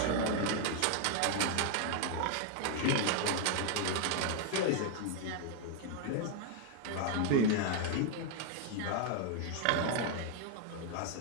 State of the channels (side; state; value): both; different; correlation 0.00